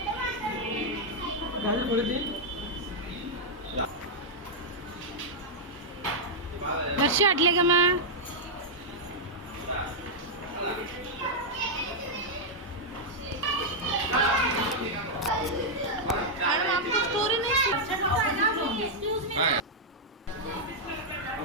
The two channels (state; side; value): normal; both; correlation -0.04